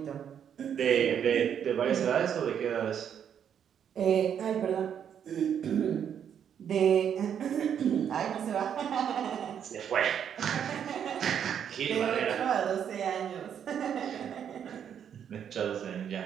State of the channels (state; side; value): quieter; left; 8.6 dB